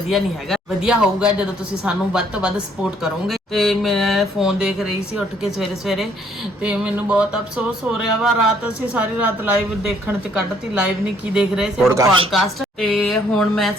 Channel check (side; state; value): both; normal; correlation 0.65